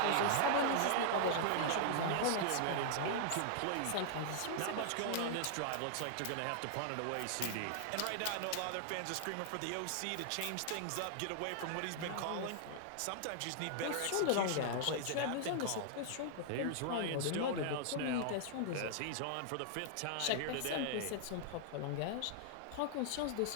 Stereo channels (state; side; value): different; both; correlation -0.01